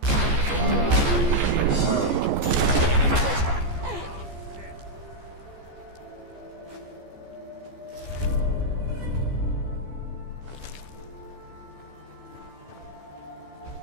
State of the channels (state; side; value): late; left; 14 ms